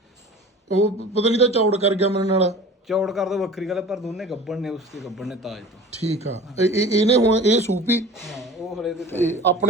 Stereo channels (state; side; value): normal; both; correlation 0.40